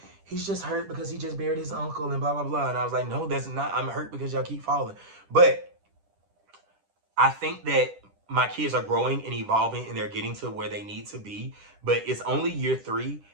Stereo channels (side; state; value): left; late; 10 ms